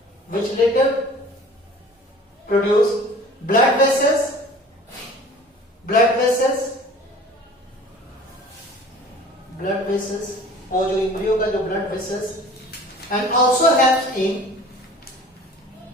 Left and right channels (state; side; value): normal; both; correlation 0.45